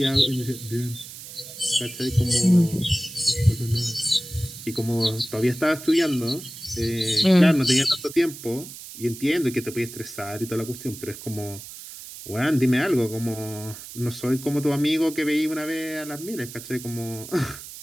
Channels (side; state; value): right; noise; hiss, 13 dB below the sound